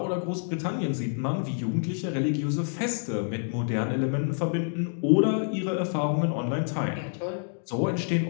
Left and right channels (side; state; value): right; silent; digital silence